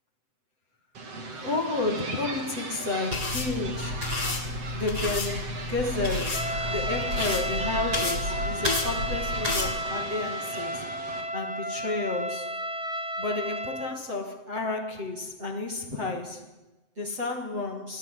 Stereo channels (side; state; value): left; late; 7.8 ms